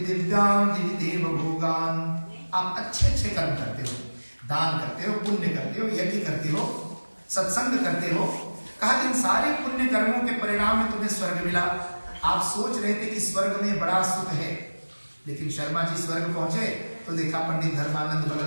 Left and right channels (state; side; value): inverted; both; correlation -1.00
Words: दिव्यान् दिविदेव भोगान्। आप अच्छे अच्छे कर्म करते हो, दान करते हो, पुण्य करते हो, यज्ञ करते हो, सत्संग करते हो, कहा इन सारे पुण्य कर्मों के परिणाम में तुम्हें स्वर्ग मिला। आप सोच रहे थे कि स्वर्ग में बड़ा सुख है, लेकिन शर्मा जी स्वर्ग पहुंचे तो देखा पंडित धर्मानंद